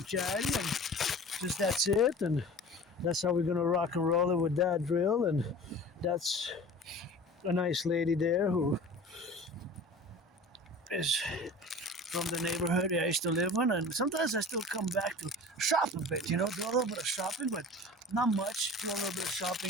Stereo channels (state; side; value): normal; both; correlation 0.40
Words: charity, and just that's it, and that's how we're gonna rock and roll it with that drill. And that's a nice lady there who is from the neighborhood I used to live in, and sometimes I still come back to shop a bit, do a little bit of shopping, but not much. Do a little bit of